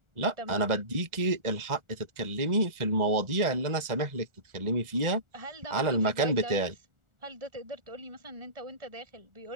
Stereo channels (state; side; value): late; left; 1.4 ms